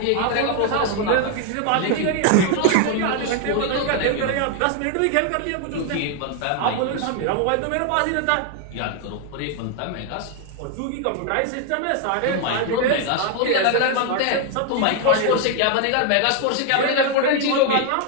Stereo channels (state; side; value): different; both; correlation 0.00